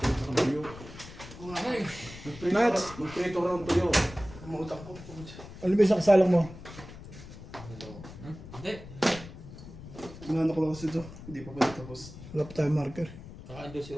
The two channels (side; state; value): left; noise; rumble, 15 dB below the sound